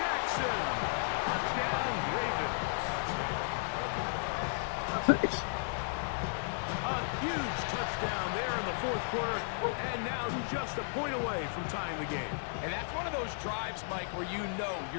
Touchdown, Ravens. A huge touchdown there in the 4th quarter, and now just a point away from tying the game. And that's one of those drives, Mike, where you know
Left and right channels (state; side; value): silent; right; digital silence